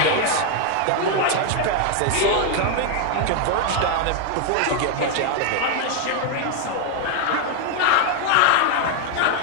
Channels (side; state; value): both; different; correlation 0.00